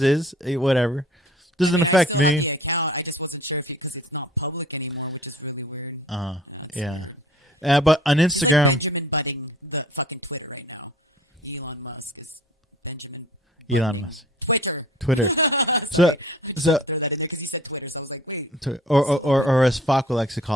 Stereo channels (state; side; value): normal; both; correlation 0.49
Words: is. Whatever. Doesn't affect me. I just wasn't sure because it's not public anymore, which is really weird. Yeah. But on Instagram. Benjamin butting the fucking Twitter right now. Elon Musk is Benjamin. Elon Musk. Twitter. So. Because he said Twitter, so I was like, wait. Or as Faco likes to